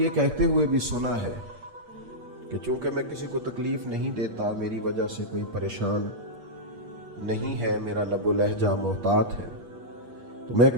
کہتے ہوئے بھی سنا ہے کہ چونکہ میں کسی کو تکلیف نہیں دیتا، میری وجہ سے کوئی پریشان نہیں ہے، میرا لب و لہجہ محتاط ہے، تو میں ایک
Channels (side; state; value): left; late; 8.5 ms